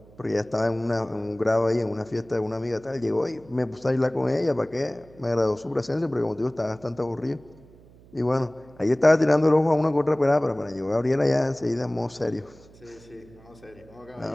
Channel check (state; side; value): noise; right; hum, 24 dB below the sound